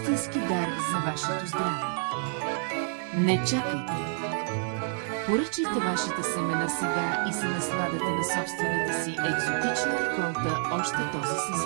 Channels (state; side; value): silent; left; 59 dB below the other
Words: дар за вашето здраве. Не чакайте! Поръчайте вашите семена сега и се насладете на собствената си екзотична реколта още този